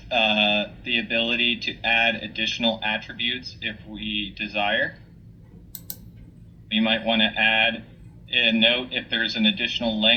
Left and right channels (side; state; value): both; identical; correlation 1.00